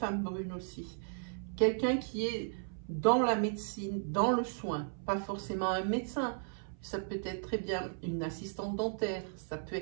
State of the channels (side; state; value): left; silent; 54 dB below the other